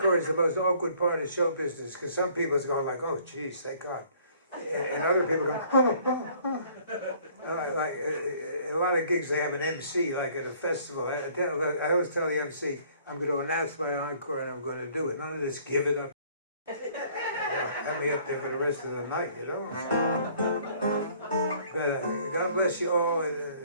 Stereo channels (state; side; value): inverted; both; correlation -0.58